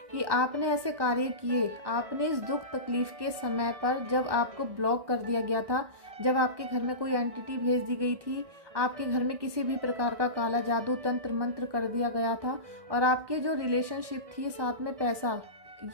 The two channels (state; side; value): late; left; 1.2 ms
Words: कि आपने ऐसे कार्य किए। आपने इस दुख तकलीफ के समय पर, जब आपको ब्लॉक कर दिया गया था, जब आपके घर में कोई एंटिटी भेज दी गई थी, आपके घर में किसी भी प्रकार का काला जादू तंत्र मंत्र कर दिया गया था, और आपके जो रिलेशनशिप थी साथ में पैसा,